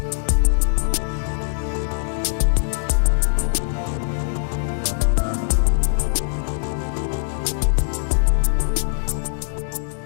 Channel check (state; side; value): silent; right; digital silence